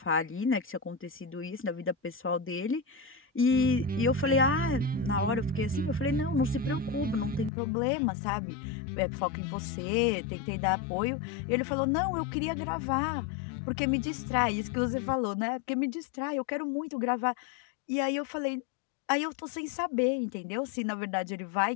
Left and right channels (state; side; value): drops out; right; at 7.5 s